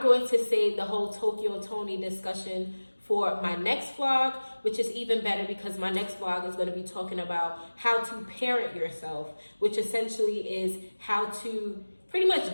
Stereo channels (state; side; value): inverted; both; correlation -1.00